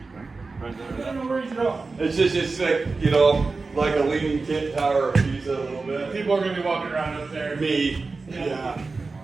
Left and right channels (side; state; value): left; quieter; 4.0 dB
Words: Right there. No worries at all. It's like, like a leaning tent tower of Pisa a little bit. People are going to be walking around up there. Me. Yeah.